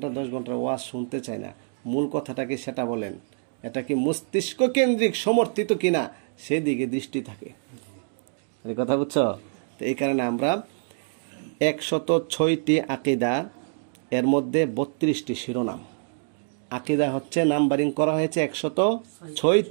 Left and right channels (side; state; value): left; silent; digital silence